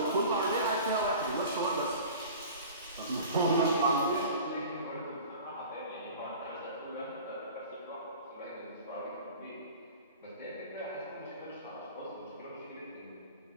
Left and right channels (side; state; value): both; inverted; correlation -0.40